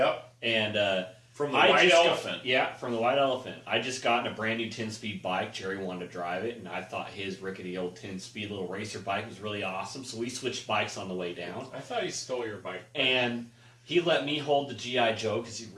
And from the White Elephant. Yeah, from the White Elephant. I just got in a brand new 10-speed bike. Jerry wanted to drive it, and I thought his rickety old 10-speed little racer bike was really awesome. So we switched bikes on the way down. I thought he stole your bike. And he let me hold the G.I. Joe because he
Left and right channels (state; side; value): identical; both; correlation 1.00